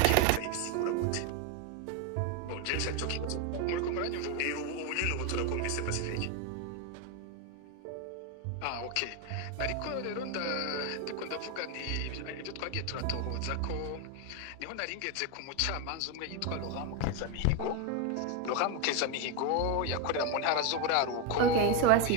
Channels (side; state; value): both; different; correlation 0.02